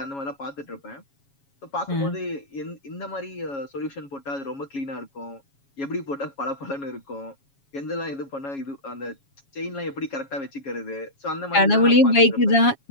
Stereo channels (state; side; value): late; right; 7.2 ms